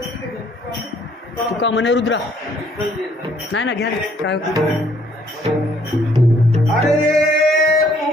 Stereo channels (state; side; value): normal; both; correlation 0.63